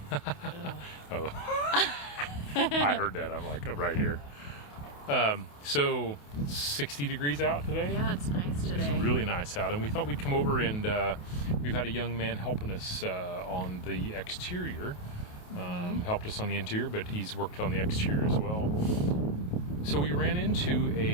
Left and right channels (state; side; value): late; right; 28 ms